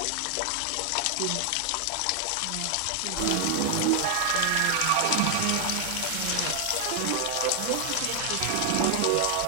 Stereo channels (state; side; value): different; both; correlation 0.00